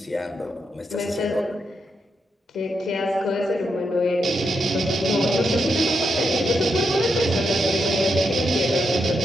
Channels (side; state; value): both; normal; correlation 0.83